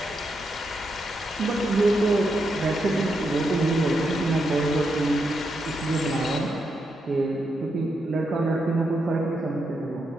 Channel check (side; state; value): both; normal; correlation 0.83